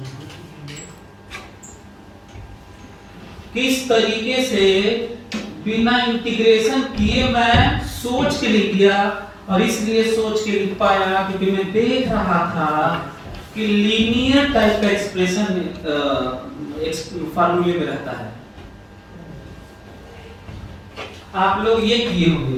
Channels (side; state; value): both; identical; correlation 1.00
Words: किस तरीके से बिना इंटीग्रेशन किए मैं सोच के लिख दिया, और इसलिए सोच के लिख पाया क्योंकि मैं देख रहा था कि लीनियर टाइप का एक्सप्रेशन फार्मूले में रहता है। आप लोग ये किए होंगे,